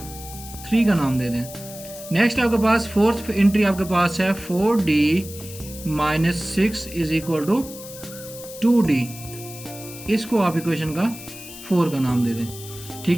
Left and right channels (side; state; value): left; noise; hiss, 14 dB below the sound